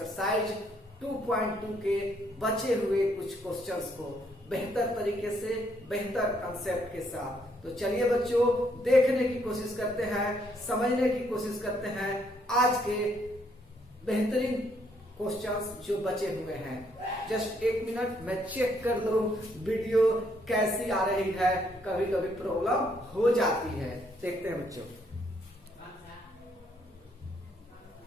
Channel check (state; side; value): normal; both; correlation 0.71